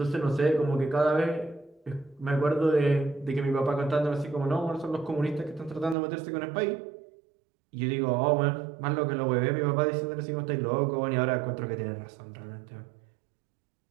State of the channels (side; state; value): left; drops out; at 6.0 s